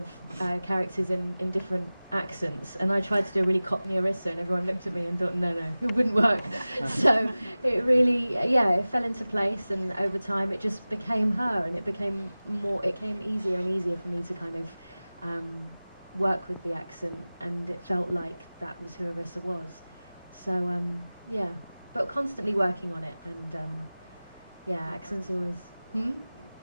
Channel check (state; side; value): inverted; both; correlation -0.98